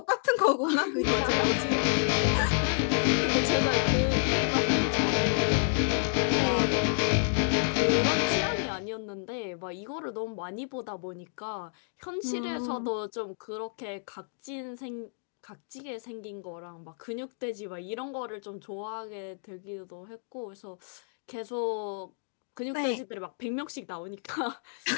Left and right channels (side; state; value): right; silent; digital silence